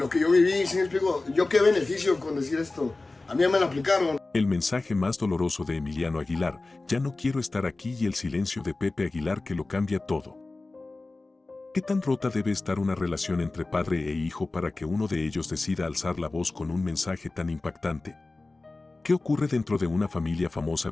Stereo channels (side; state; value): right; quieter; 3.2 dB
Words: que yo viví, ¿sí me explico? Yo qué beneficio con decir esto. A mí ya me lo aplicaron. El mensaje más doloroso de Emiliano Aguilar: ya no quiero estar aquí, y el silencio de Pepe Aguilar que lo cambia todo. ¿Qué tan rota debe estar una relación entre padre e hijo para que uno de ellos decida alzar la voz con un mensaje tan impactante? ¿Qué ocurre dentro de una familia famosa